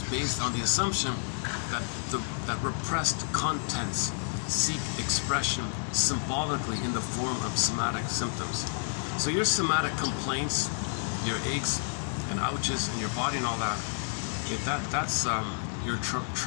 based on the assumption that that repressed contents seek expression symbolically in the form of somatic symptoms. So your somatic complaints, your aches and ouches in your body and all that, that's your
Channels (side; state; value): right; silent; digital silence